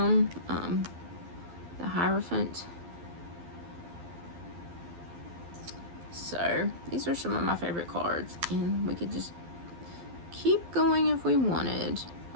The Hierophant. So these are some of my favorite cards, and we could just keep going if we wanted.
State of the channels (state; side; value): late; left; 12 ms